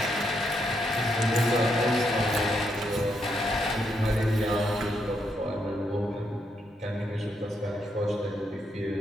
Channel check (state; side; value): normal; both; correlation 0.78